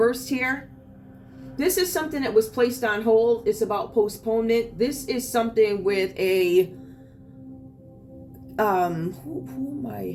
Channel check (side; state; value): both; identical; correlation 1.00